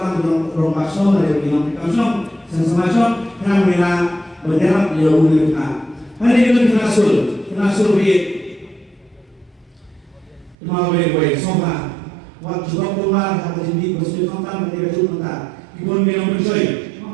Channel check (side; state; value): left; drops out; at 10.6 s